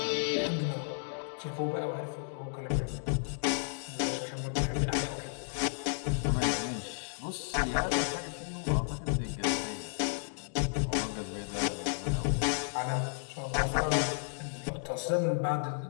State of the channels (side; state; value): right; silent; digital silence